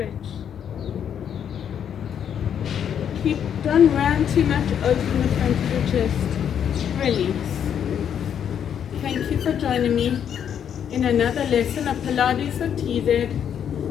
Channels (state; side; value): quieter; right; 8.7 dB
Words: Don't round too much, open the front of the chest, release. Thank you for joining me in another lesson of Pilates with TZ.